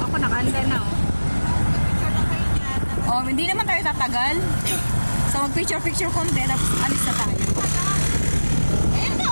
Ako nakahanda na oh. Oh, hindi naman tayo tatagal. So, mag-picture konti, tapos alis na tayo.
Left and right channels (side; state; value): both; inverted; correlation -1.00